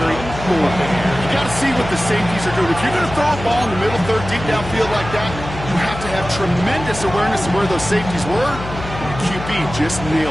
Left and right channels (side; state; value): left; noise; hum, 10 dB below the sound